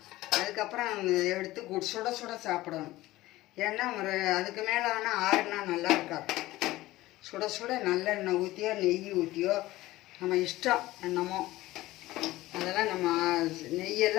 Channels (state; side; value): quieter; right; 17.4 dB